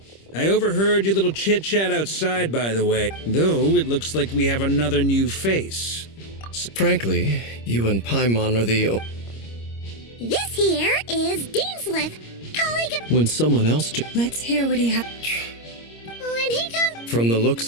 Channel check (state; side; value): late; right; 26 ms